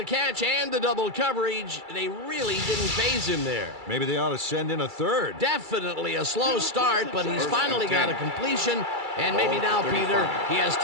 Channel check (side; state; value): left; late; 2.3 ms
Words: catch and the double coverage. They really didn't phase him there. Maybe they ought to send in a third. Definitely a slow start, but he's finally got a completion. And maybe now, Peter, he has